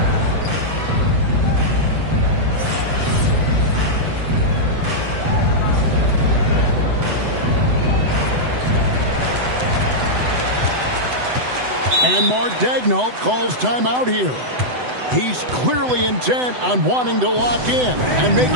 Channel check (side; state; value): left; late; 7.9 ms